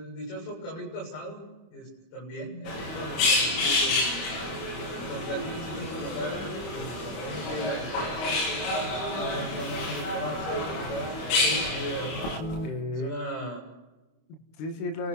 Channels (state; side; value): late; right; 25 ms